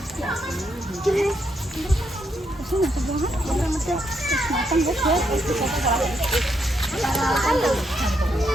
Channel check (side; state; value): both; normal; correlation 0.78